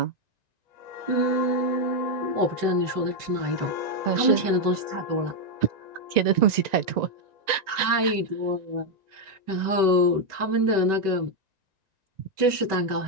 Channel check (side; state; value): left; late; 1.9 ms